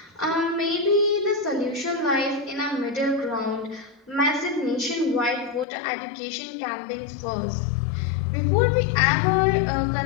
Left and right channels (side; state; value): right; drops out; at 5.7 s